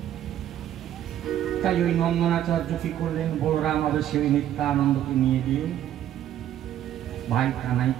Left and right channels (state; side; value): quieter; left; 11.4 dB